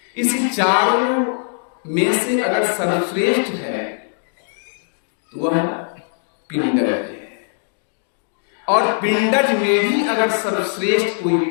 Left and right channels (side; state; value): right; silent; digital silence